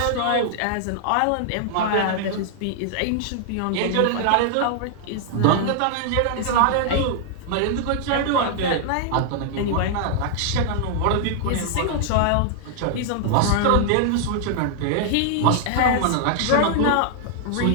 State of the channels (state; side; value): different; both; correlation -0.01